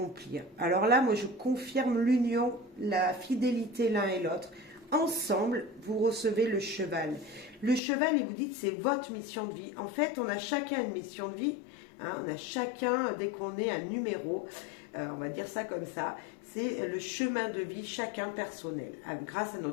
Alors là, moi, je confirme l'union, la fidélité l'un et l'autre. Ensemble, vous recevez le cheval. Le cheval, il vous dit que c'est votre mission de vie. En fait, on a chacun une mission de vie. Hein, on a chacun, dès qu'on est un numéro, on va dire ça comme ça, c'est le chemin de vie, chacun personnel, grâce à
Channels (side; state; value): right; drops out; at 7.8 s